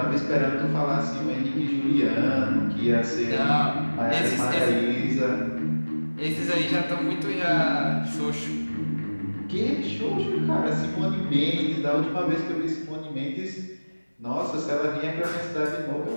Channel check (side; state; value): both; inverted; correlation -1.00